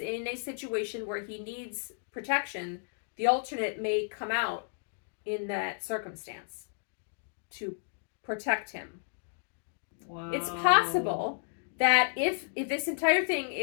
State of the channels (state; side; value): silent; right; digital silence